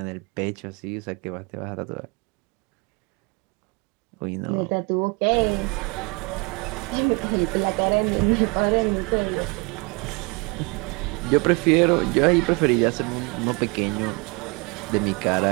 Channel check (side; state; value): left; quieter; 29.7 dB